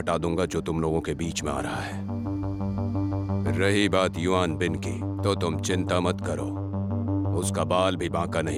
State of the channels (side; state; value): both; identical; correlation 1.00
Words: दूंगा जो तुम लोगों के बीच में आ रहा है। रही बात युआन बिन की, तो तुम चिंता मत करो, उसका बाल भी बांका